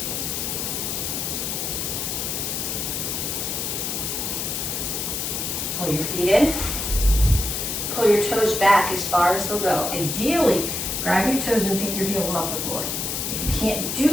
Pull your feet in. Pull your toes back as far as they'll go. Ideally, grab your toes and pick your heels off the floor. If you can't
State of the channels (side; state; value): left; noise; hiss, 2 dB below the sound